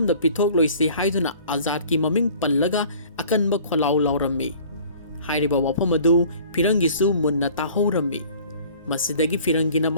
pithok loisi haiduna azad ki maming pallaga akanba kholaw lawrammi hairiba wafam adu firangi su munna tahorrammi masidagi firangina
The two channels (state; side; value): inverted; both; correlation -0.50